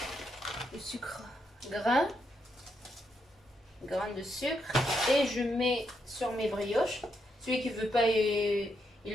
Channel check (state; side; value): normal; both; correlation 0.80